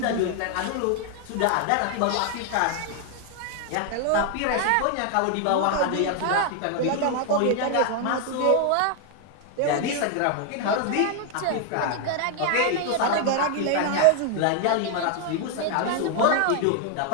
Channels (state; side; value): different; both; correlation 0.00